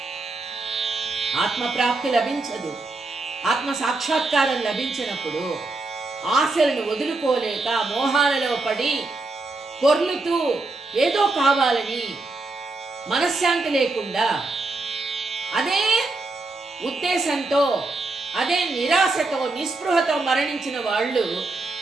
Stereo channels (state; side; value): quieter; left; 3.2 dB